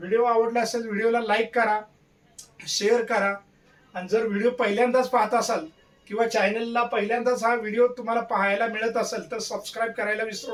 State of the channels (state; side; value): identical; both; correlation 1.00